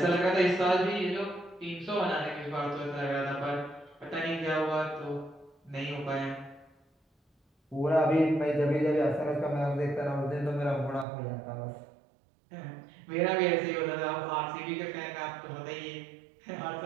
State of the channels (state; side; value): drops out; left; at 11.1 s